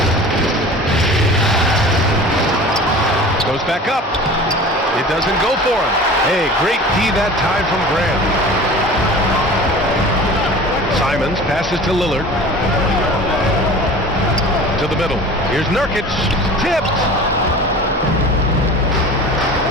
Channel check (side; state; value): both; normal; correlation 0.40